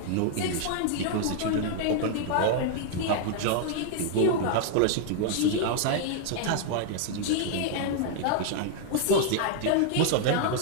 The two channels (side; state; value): both; different; correlation 0.00